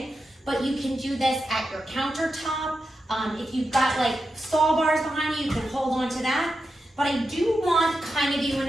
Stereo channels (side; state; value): both; normal; correlation 0.89